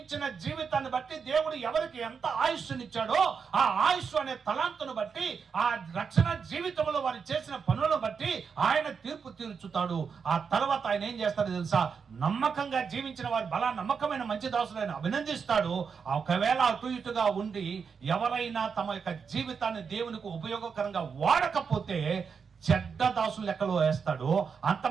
జీవితాన్ని బట్టి దేవుడు ఎవరికి ఎంత ఆయుష్నిచ్చాడో ఆ ఆయుష్ అనే తలాంతును బట్టి, ఆ రక్షణ జీవితంలో వారు చేసిన పనులను బట్టి ఆయన తీర్పు తీర్చుతాడు. ఆ తర్వాత ఆయన ఏం చేస్తాడో తెలుసా, నమ్మకంగా జీవించిన వారు బలా నమ్మకమైన మంచి దాసులను అభినందిస్తాడు. ఒకవేళ అటు ఇటుగా ఉండి ఎవరైనా తమ యొక్క జీవితాన్ని దేవునికి ఉపయోగకరంగా వాడకపోతే చెడ్డ దాసులు లెక్కలో వేస్తాడు. అంత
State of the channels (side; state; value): left; quieter; 6.0 dB